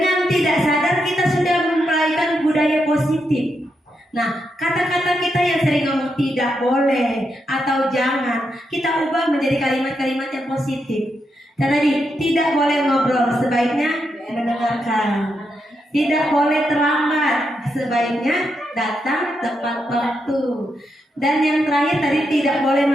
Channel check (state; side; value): normal; both; correlation 0.83